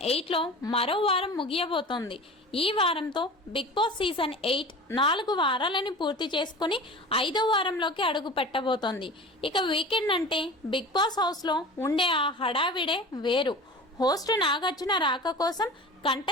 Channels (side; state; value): both; normal; correlation 0.36